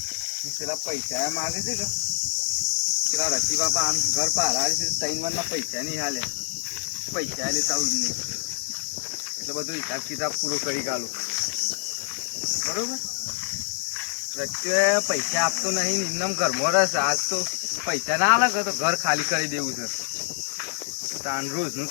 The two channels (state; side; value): silent; right; 61 dB below the other